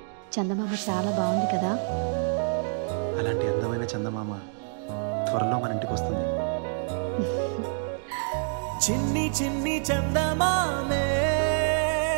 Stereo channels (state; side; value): silent; left; 58 dB below the other